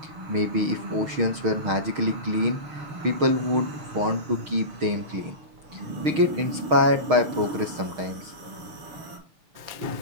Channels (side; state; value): left; late; 6.4 ms